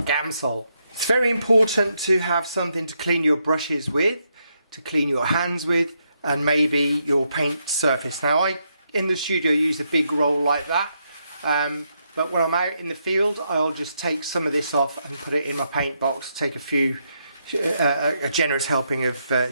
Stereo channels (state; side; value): inverted; both; correlation -0.79